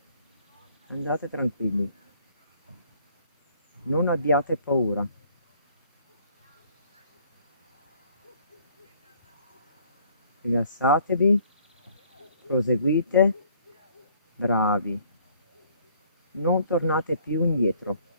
Andate tranquilli. Non abbiate paura. Rilassatevi, proseguite, bravi. Non tornate più indietro,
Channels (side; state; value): both; inverted; correlation -0.60